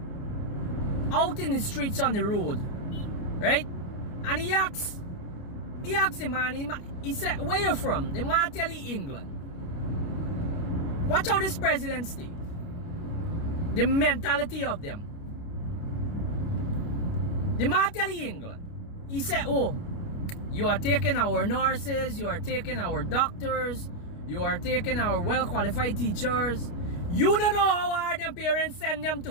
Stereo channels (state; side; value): late; right; 29 ms